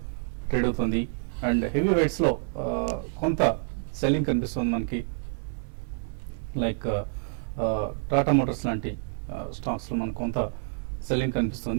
ట్రేడ్ అవుతుంది. అండ్ హెవీ వెయిట్స్ లో కొంత సెల్లింగ్ కనిపిస్తుంది మనకి. లైక్ టాటా మోటార్స్ లాంటి స్టాక్స్ లో మనకు కొంత సెల్లింగ్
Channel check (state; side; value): silent; left; digital silence